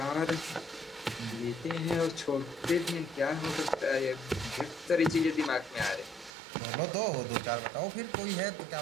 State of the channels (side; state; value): left; drops out; at 6.3 s